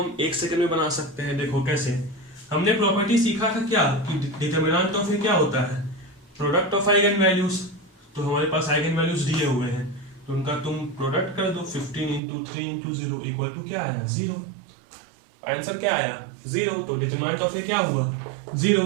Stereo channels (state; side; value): drops out; left; at 12.2 s